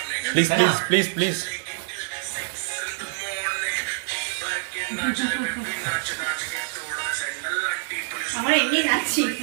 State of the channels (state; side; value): silent; left; digital silence